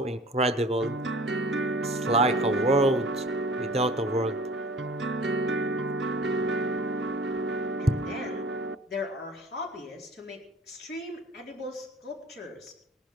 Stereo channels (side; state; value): both; normal; correlation 0.46